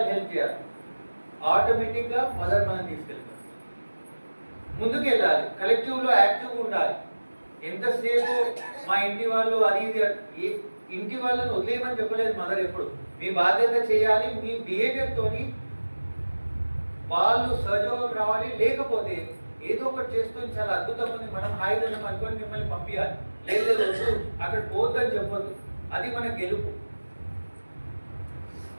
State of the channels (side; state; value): both; inverted; correlation -1.00